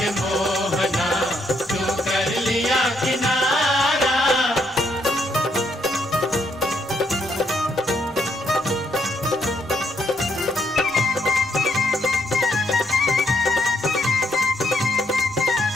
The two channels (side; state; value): both; normal; correlation 0.73